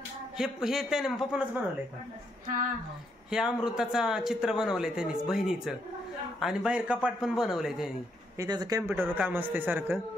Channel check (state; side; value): normal; both; correlation 0.76